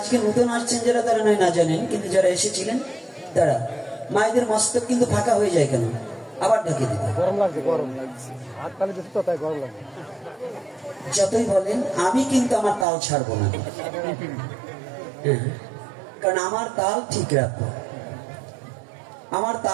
নতুন আসছেন যারা, তারা নয় না জানেন, কিন্তু যারা এসেছিলেন তারা, মায়েদের মস্তক কিন্তু ফাঁকা হয়ে যায় কেন? আবার ঢেকে দিতে গরম লাগছে, গরম লাগছে, হাত তালি দিতে তো তাই গরম লাগছে। যতই বলেন আমি কিন্তু আমার তাল ছাড়বো না, কারণ আমার তাল ঠিক রাখবো। আমার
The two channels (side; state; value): left; drops out; at 12.9 s